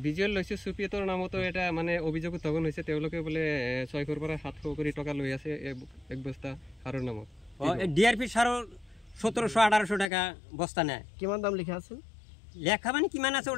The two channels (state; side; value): drops out; right; at 10.1 s